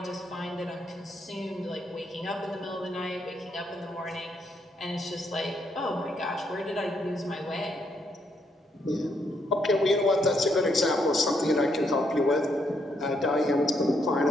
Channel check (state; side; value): normal; both; correlation 0.75